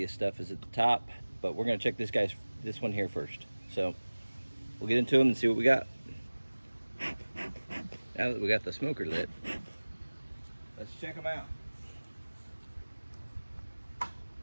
stuff is at the top, but we're gonna check this one here first. So we'll get into them and see what we got. Now that we got the smoker lit, let's check them out.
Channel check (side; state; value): both; inverted; correlation -1.00